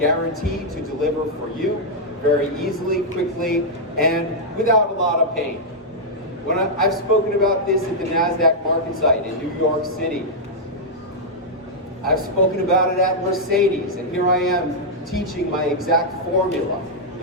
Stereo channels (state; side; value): normal; both; correlation -0.06